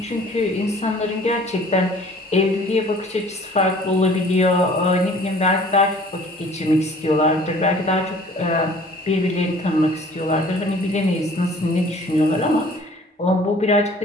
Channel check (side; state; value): both; normal; correlation 0.51